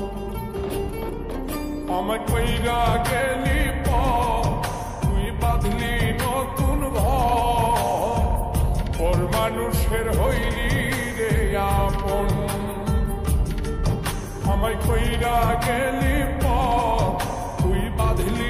আমায় কইরা গেলি তুই বাঁধলি নতুন ঘর, পর মানুষের হইলি রে আপন। আমায় কইরা গেলি তুই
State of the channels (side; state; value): both; identical; correlation 1.00